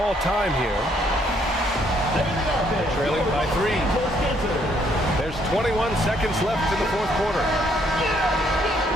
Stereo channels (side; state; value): both; normal; correlation 0.68